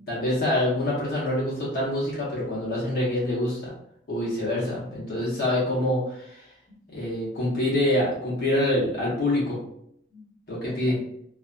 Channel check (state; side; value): normal; both; correlation 0.40